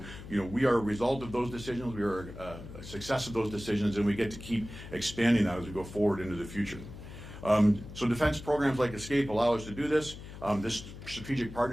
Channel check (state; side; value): noise; left; hum, 13 dB below the sound